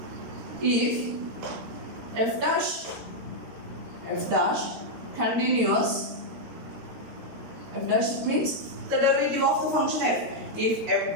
if f dash continuous, f dash means the derivative of the function f. If f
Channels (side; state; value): left; late; 13 ms